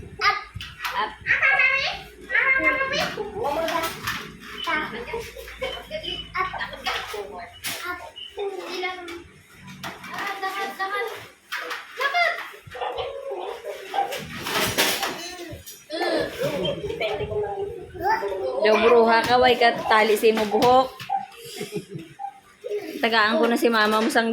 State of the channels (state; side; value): identical; both; correlation 1.00